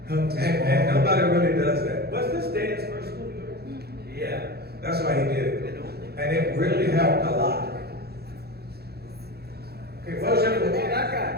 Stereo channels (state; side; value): late; left; 0.46 ms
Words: helped us And all. nobody really does that. Was this Dan's first movie? Yeah, that's why he did it. And it really helped a lot. Okay, motion. That